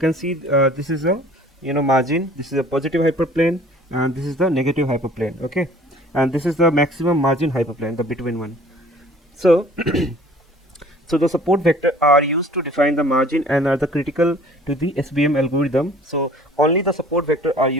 see this is a margin. This is a positive hyperplane, and this is the negative hyperplane. Okay, and this is the maximum margin hyperplane, the between one. So so the support vector are used to define the margin and are the critical to the SVM algorithm. So only the support vector are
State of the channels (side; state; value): both; normal; correlation 0.51